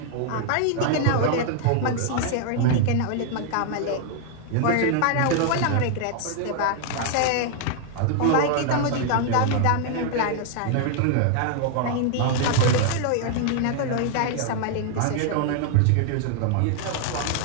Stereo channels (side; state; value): both; different; correlation 0.00